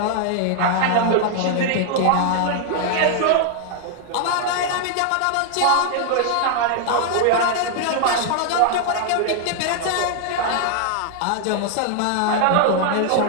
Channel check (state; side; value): different; both; correlation 0.00